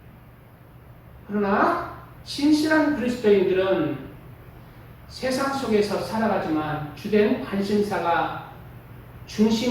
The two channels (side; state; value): both; identical; correlation 1.00